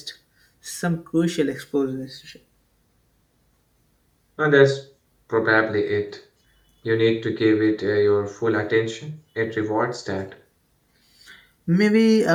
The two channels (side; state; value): both; identical; correlation 1.00